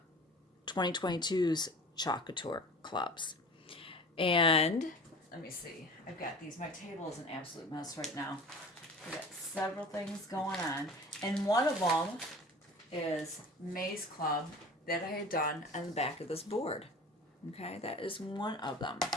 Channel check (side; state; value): both; normal; correlation 0.40